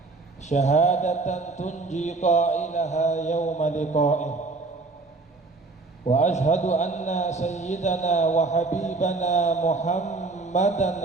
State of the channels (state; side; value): quieter; left; 3.6 dB